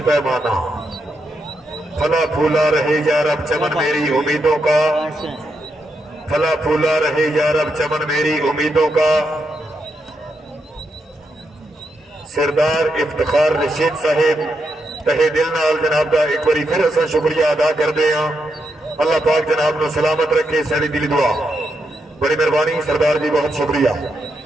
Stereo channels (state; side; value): normal; both; correlation 0.82